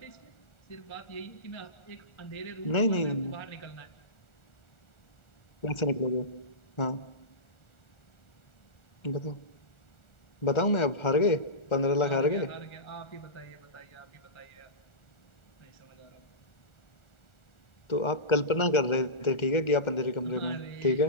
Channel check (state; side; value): late; right; 1.4 ms